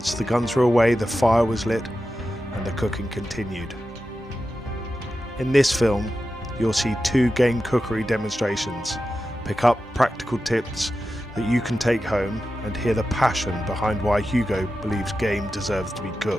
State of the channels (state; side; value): normal; both; correlation 0.91